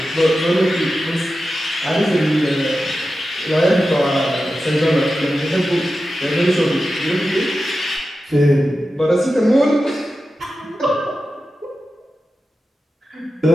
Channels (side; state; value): both; normal; correlation 0.92